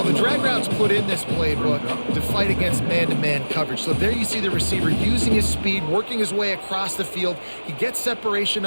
the drag route's put in this playbook to fight against man-to-man coverage. So there you see the receiver using his speed, working his way across the field. He gets separation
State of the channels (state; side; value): inverted; both; correlation -1.00